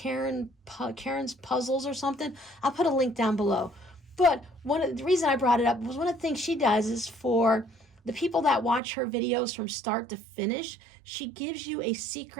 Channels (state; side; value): drops out; left; at 8.8 s